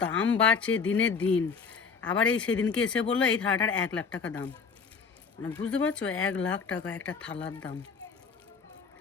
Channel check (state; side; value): quieter; right; 5.5 dB